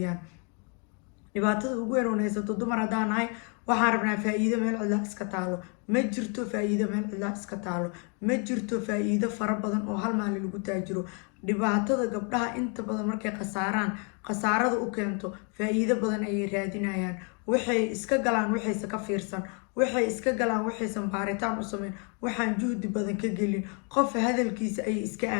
dhibaatada ugu weyn oo haysato dumar haddaan nahay, waxaan rabnaa faa'iido meel cidla iska taalo. ma jirto faa'iido meel cidla iska taalo, ma jirto faa'iido fara badan oo hal maalin lagu taajiro. dhibaatada gabdhaha inta badan markay khasaarada u keento faa'iido badan ayay raadinayaan. waxay iska galaan waxayse ka fiirsan, waxay iska galaan waxaysan baaritaan u sameyn, waxaan juhdi badan ka gelin. qof hadalkiisa ayay iska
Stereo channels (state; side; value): quieter; right; 37.4 dB